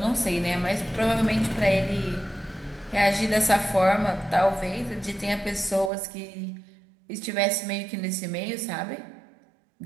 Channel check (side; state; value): left; drops out; at 5.9 s